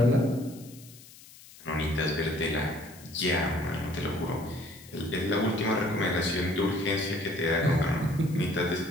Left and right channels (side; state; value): left; noise; hiss, 20 dB below the sound